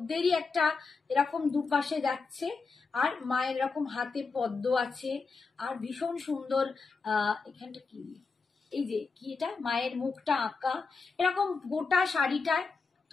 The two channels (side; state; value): right; quieter; 4.5 dB